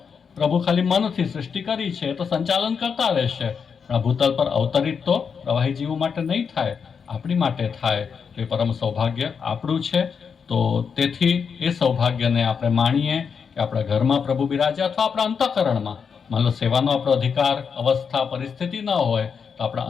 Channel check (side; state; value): right; quieter; 6.3 dB